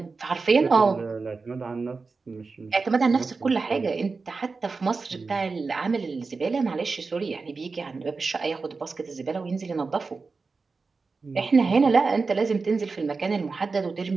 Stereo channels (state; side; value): quieter; left; 4.3 dB